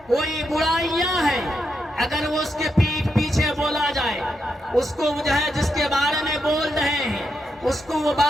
کوئی برائیاں ہیں، اگر وہ اس کے پیٹھ پیچھے بولا جائے، اس کو جو ہے جس کے بارے میں بول رہے ہیں اس کو وہ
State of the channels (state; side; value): normal; both; correlation 0.83